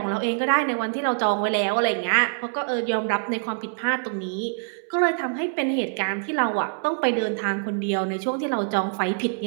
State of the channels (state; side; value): silent; left; digital silence